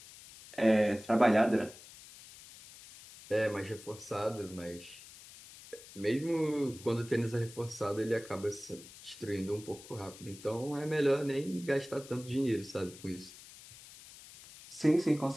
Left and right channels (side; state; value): left; noise; hiss, 18 dB below the sound